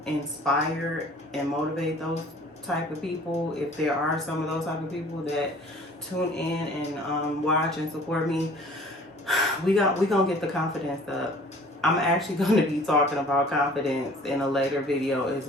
inspire and motivate those type of people. If there are some of those type of people that tune in and watch and support me, we gonna get the confidence up. I'm actually going to be talking about confidence in a later video as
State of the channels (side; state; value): both; normal; correlation 0.50